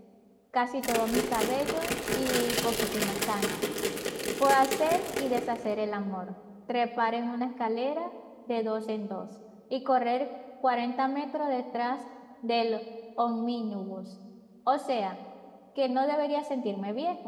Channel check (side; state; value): both; identical; correlation 1.00